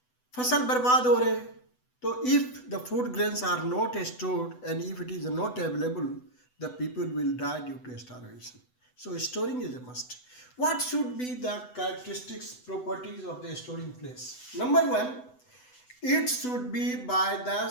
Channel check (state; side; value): late; right; 8.0 ms